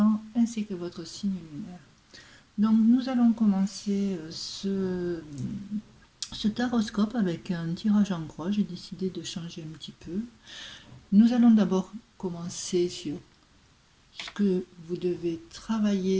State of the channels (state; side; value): identical; both; correlation 1.00